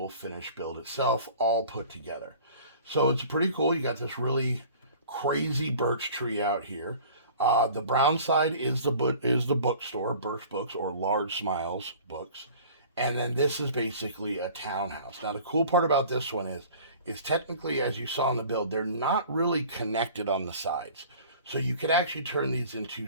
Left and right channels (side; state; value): both; inverted; correlation -0.46